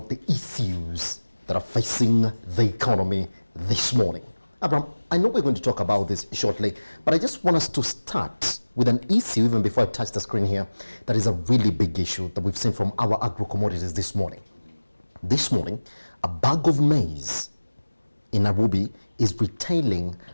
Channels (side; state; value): both; inverted; correlation -1.00